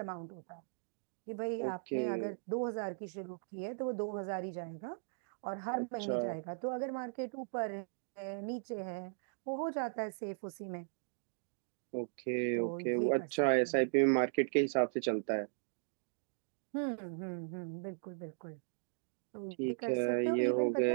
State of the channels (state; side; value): silent; left; digital silence